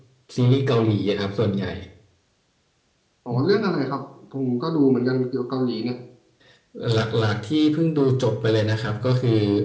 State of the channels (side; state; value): both; identical; correlation 1.00